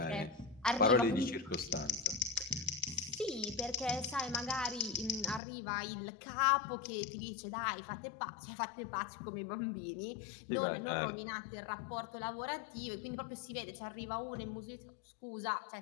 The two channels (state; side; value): drops out; right; at 5.4 s